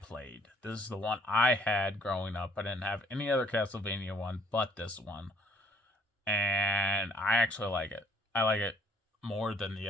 This is the one I had growing up. I didn't have any other Castlevania one but this one. And I actually like it. I like it more than the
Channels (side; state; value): both; normal; correlation 0.61